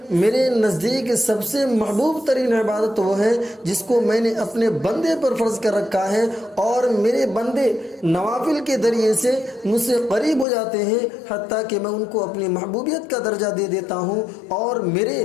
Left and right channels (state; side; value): drops out; right; at 10.5 s